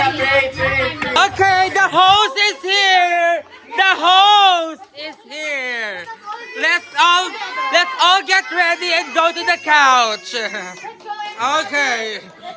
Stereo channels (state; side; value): identical; both; correlation 1.00